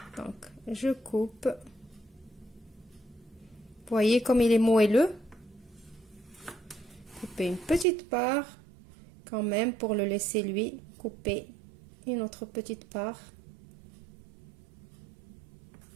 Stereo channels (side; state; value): left; drops out; at 7.9 s